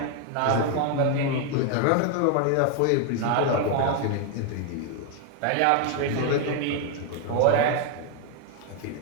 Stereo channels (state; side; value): different; both; correlation 0.01